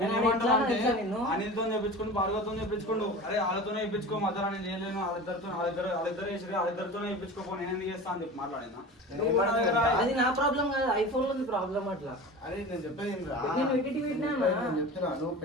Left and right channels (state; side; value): normal; both; correlation 0.34